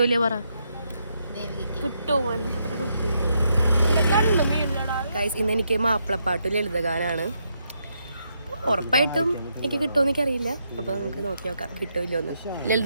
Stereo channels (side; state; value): both; inverted; correlation -0.79